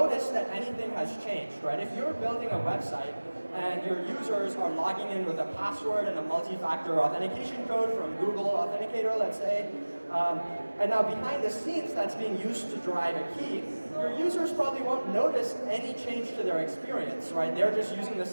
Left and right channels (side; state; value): both; inverted; correlation -1.00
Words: that anything has changed, right? If you're building a website and your users are logging in with a password and a multi-factor authentication code from Google Authenticator, let's say, and now behind the scenes that's being used to derive a key, your users probably won't notice any change to their experience, right? They're just using the